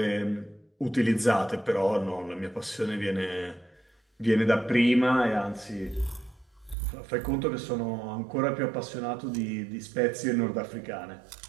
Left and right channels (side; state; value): left; drops out; at 6.8 s